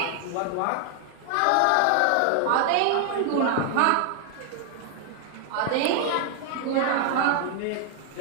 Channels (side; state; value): both; different; correlation 0.00